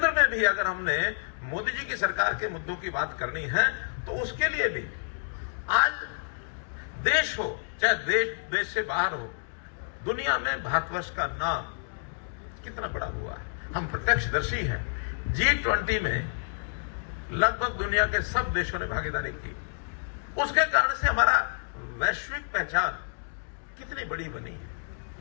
में भी अगर हमने मोदी जी की सरकार के मुद्दों की बात करनी है तो उसके लिए भी आज देश हो चाहे देश से बाहर हो, दुनिया में भारतवर्ष का नाम कितना बड़ा हुआ है, हम प्रत्यक्षदर्शी हैं। G20 में लगभग दुनिया के सब देशों ने भागीदारी की। उसके कारण से हमारा वैश्विक पहचान कितनी बड़ी बनी है।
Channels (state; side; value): silent; right; digital silence